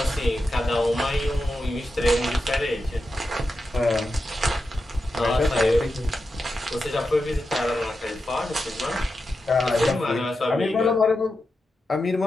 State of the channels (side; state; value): both; normal; correlation 0.89